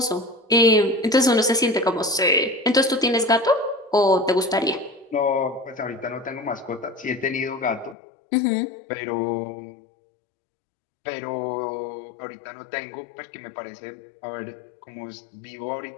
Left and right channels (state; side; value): drops out; right; at 8.0 s